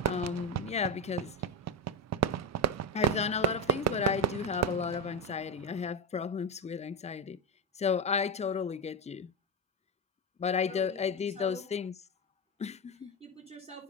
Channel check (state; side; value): normal; both; correlation 0.11